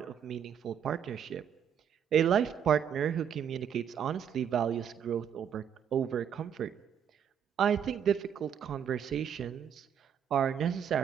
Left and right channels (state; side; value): quieter; left; 8.4 dB